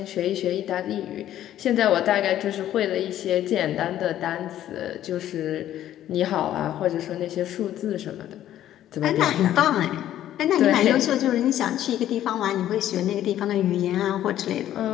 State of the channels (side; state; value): right; quieter; 12.2 dB